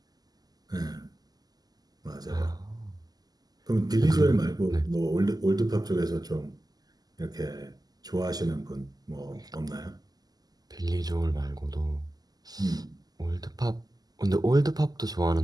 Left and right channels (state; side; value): late; left; 0.19 ms